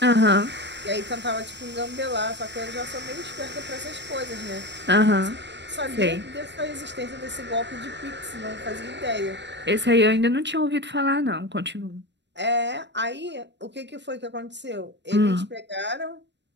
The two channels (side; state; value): left; late; 0.51 ms